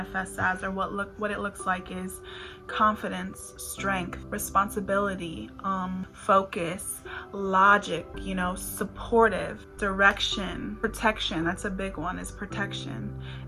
as, or what it looks like, is confidence, strength, responsibility, focus, logic, supportive, direction, protection. That's a big one, is protection.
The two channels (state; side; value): identical; both; correlation 1.00